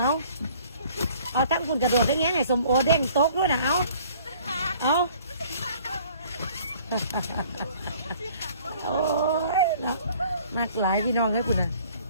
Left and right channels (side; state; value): both; inverted; correlation -0.54